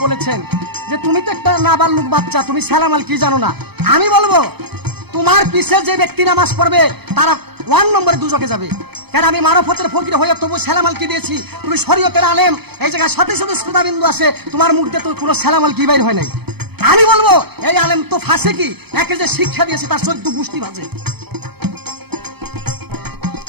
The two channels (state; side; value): late; left; 0.97 ms